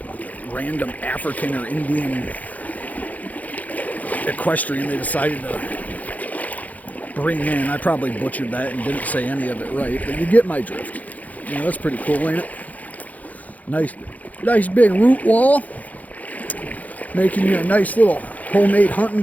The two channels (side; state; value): right; late; 0.077 ms